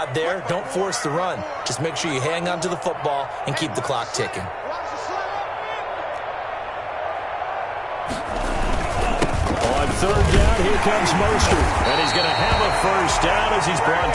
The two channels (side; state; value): both; identical; correlation 1.00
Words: there, don't force the run. Just make sure you hang on to the football and keep the clock ticking. third down, here comes Mostert. And he's going to have a first down as he's brought